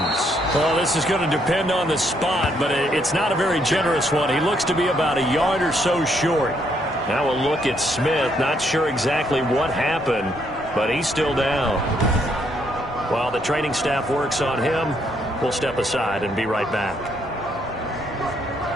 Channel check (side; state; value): both; normal; correlation 0.72